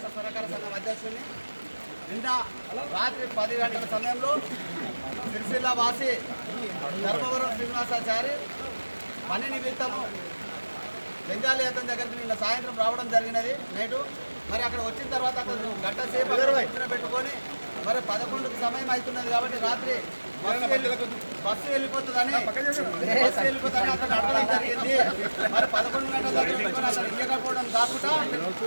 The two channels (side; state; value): both; inverted; correlation -1.00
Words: సహకార సంఘం అధ్యక్షుడిని. నిన్న రాత్రి 10 గంటల సమయంలో సిరిసిల్ల వాసి ధర్మవరం శ్రీనివాసాచారి పని నిమిత్తము బెంగాలీ అతని దగ్గరికి నిన్న సాయంత్రం రావడం జరిగినది నైటు. మరి అక్కడ వచ్చిన తర్వాత అక్కడ గంట సేపు పెట్టుకొని మరి 11కి సమయం అవుతున్నది కాబట్టి రాత్రి బస్సు వెళ్ళిపోతుందని అతను అడగడం జరిగింది. మరి 11 గంటల దగ్గర అతను ఇయ్యకపోవడం కాకుండా